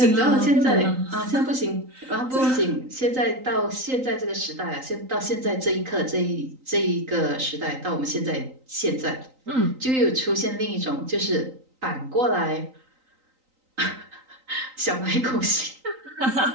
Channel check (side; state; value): left; late; 3.9 ms